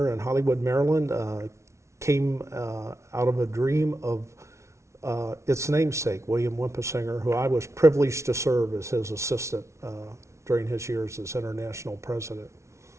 in Hollywood, Maryland, came out of a dream of its namesake, William Wentsinger, who I was privileged to serve as his assistant during his years as international president.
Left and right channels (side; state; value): left; late; 0.13 ms